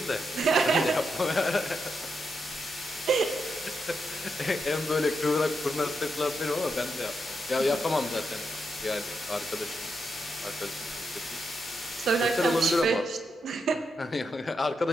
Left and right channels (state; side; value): normal; both; correlation 0.83